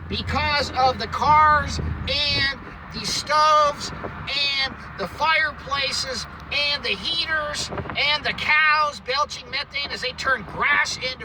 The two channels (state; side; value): identical; both; correlation 1.00